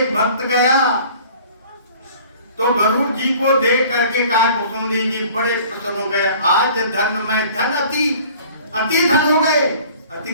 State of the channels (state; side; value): inverted; both; correlation -0.49